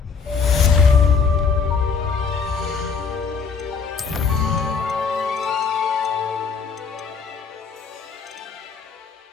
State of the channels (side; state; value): right; quieter; 5.5 dB